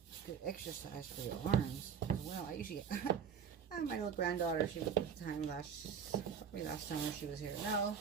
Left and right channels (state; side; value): quieter; left; 7.4 dB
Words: Good exercise for your arms as well. I usually my little granddaughter, she was at the time probably last summer she was here. No,